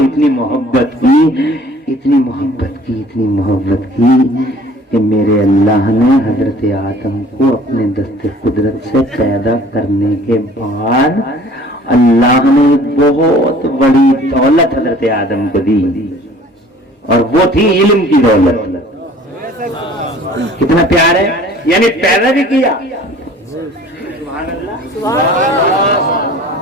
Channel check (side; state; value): both; normal; correlation 0.50